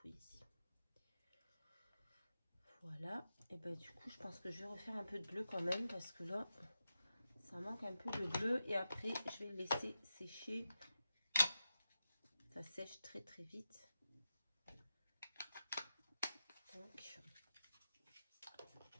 Voilà. Et ben du coup, je pense que je vais refaire un peu de bleu quand même parce que là, ça manque un peu de bleu. Et après, je vais le laisser sécher. Ça sèche très très vite. Donc,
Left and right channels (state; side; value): inverted; both; correlation -0.90